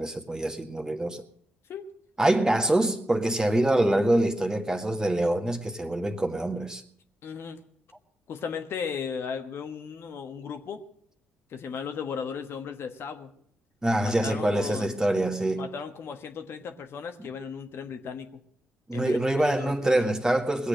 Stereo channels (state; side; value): normal; both; correlation 0.89